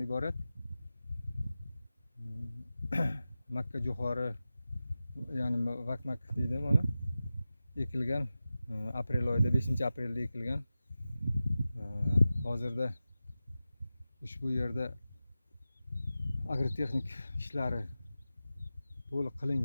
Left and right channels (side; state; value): both; inverted; correlation -0.94